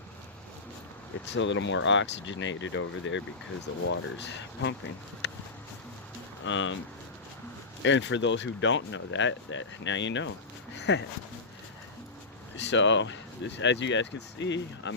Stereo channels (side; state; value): right; quieter; 3.7 dB